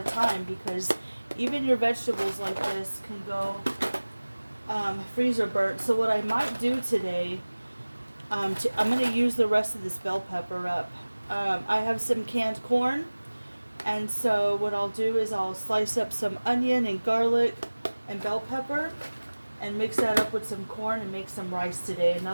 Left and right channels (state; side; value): inverted; both; correlation -1.00